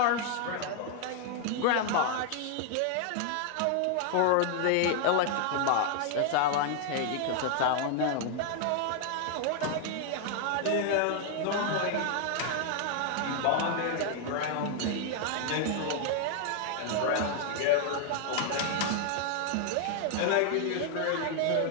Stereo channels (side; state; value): both; different; correlation 0.00